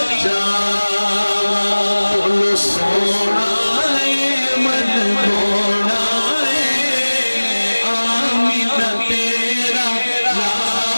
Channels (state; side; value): inverted; both; correlation -1.00